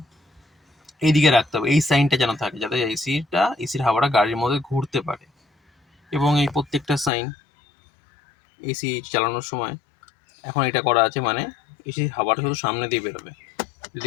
এইদিকে রাখতে হবে, এই সাইনটা যেন থাকে, যাতে এসির হাওয়াটা গাড়ির মধ্যে ঘুরতে পারে। এবং এই প্রত্যেকটা সাইন এসি চালানোর সময় এখন এটা করা আছে, মানে এসির হাওয়াটা শুধু সামনে দিয়ে বেরোবে।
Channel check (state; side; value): drops out; right; at 7.1 s